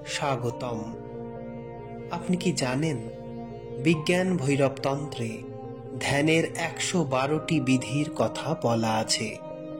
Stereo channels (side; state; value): both; identical; correlation 1.00